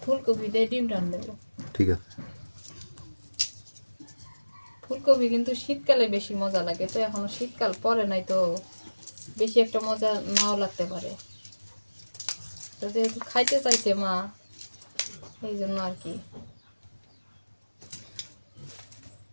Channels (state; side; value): inverted; both; correlation -1.00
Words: ফুলকপি দিয়ে ডিম রান্না দেবো। ঠিক আছে। ফুলকপি কিন্তু শীতকালে বেশি মজা লাগে, তো এখনো শীতকাল পরে নাই, তো বেশি একটা মজা নাও লাগতে পারে। তো যেহেতু খাইতে চাইছে মা, এই জন্য আর কি।